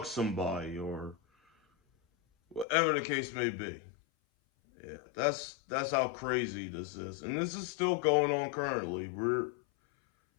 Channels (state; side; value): drops out; right; at 2.7 s